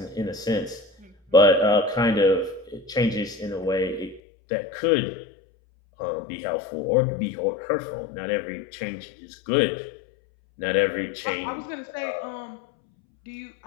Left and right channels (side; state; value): right; drops out; at 4.2 s